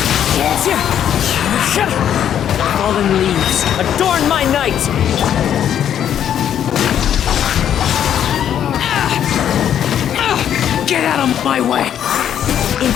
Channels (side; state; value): right; quieter; 9.8 dB